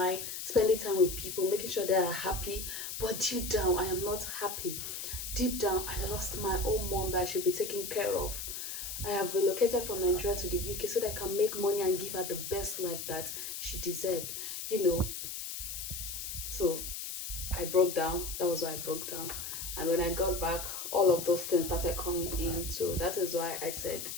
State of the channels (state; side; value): noise; left; hiss, 6 dB below the sound